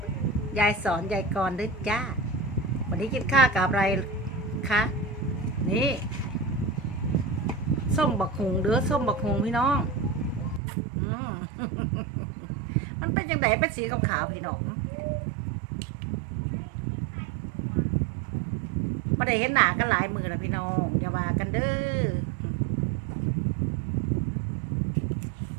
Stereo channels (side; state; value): left; drops out; at 10.6 s